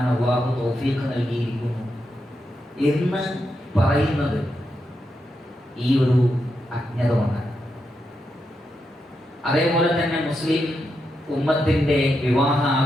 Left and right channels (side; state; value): both; normal; correlation 0.85